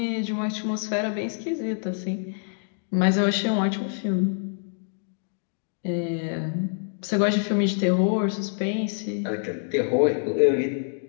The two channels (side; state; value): right; silent; digital silence